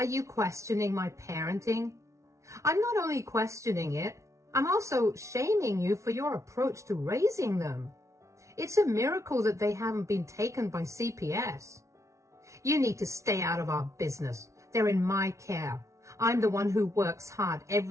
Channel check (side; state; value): left; late; 0.14 ms